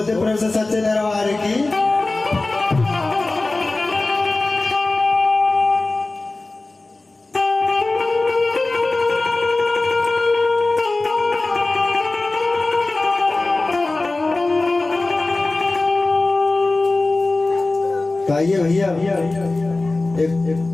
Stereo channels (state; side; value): quieter; right; 3.1 dB